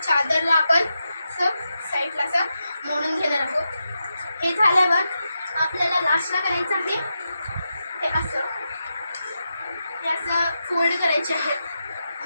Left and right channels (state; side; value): inverted; both; correlation -0.87